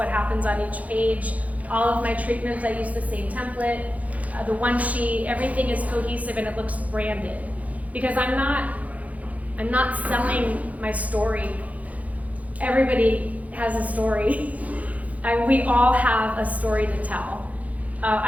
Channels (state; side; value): late; left; 0.071 ms